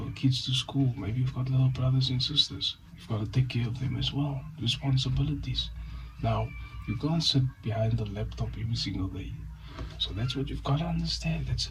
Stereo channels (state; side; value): identical; both; correlation 1.00